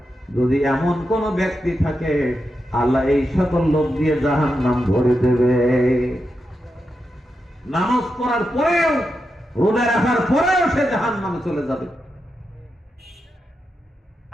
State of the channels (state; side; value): normal; both; correlation 0.87